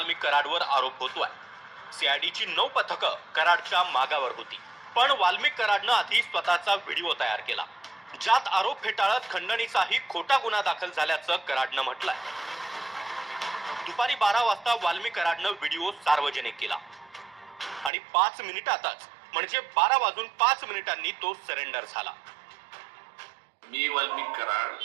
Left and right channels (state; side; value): drops out; left; at 17.9 s